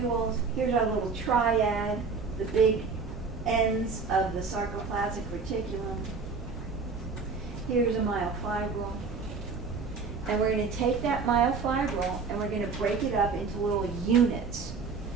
Here's our little triad, the big ends of the sarcoplasmic reticulum. Here's a myofibril. And we're going to take that myofibril and we're going to break it up into little units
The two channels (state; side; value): quieter; left; 4.8 dB